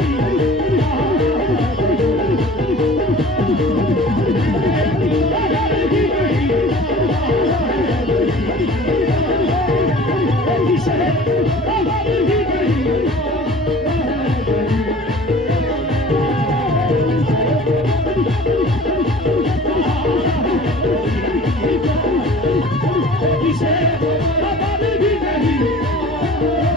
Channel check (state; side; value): normal; both; correlation 0.45